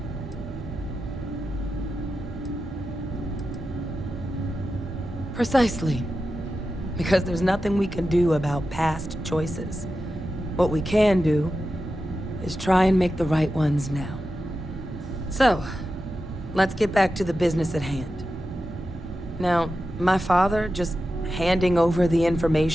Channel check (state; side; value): normal; both; correlation 0.91